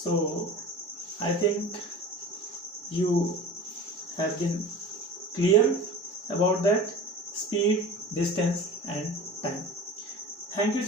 I think you have been clear about that speed, distance and time. Thank you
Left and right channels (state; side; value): normal; both; correlation 0.37